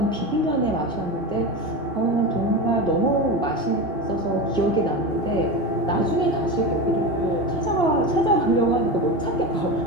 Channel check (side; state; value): right; late; 2.8 ms